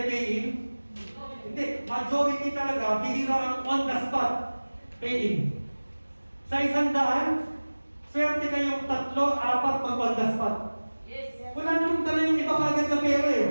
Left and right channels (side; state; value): both; inverted; correlation -1.00